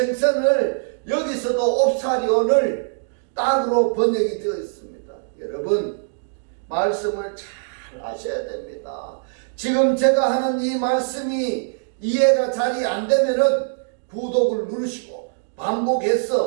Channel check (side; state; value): left; silent; digital silence